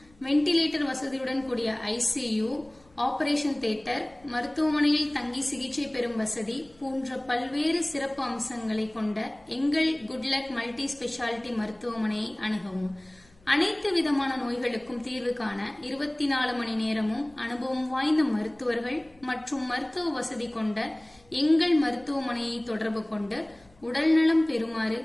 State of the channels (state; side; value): noise; left; hum, 30 dB below the sound